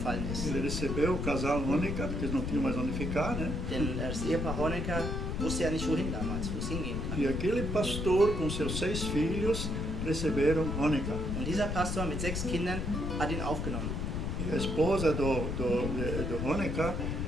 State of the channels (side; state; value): left; noise; rumble, 2 dB below the sound